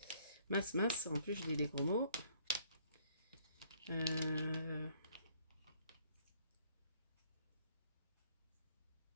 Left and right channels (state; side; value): inverted; both; correlation -0.62